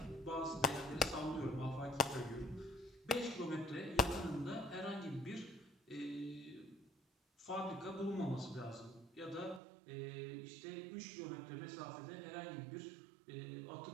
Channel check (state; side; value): drops out; left; at 9.6 s